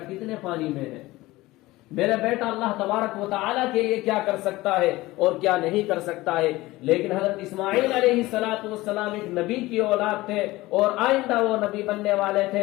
کتنے پانی میں ہے، میرا بیٹا اللہ تبارک و تعالیٰ کے لیے کیا کر سکتا ہے اور کیا نہیں کر سکتا ہے۔ لیکن حضرت اسماعیل علیہ السلام ایک نبی کی اولاد تھے اور آئندہ وہ نبی بننے والے تھے،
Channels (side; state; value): right; quieter; 19.0 dB